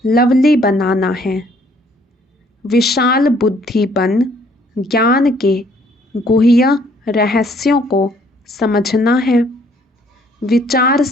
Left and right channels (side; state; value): both; normal; correlation 0.63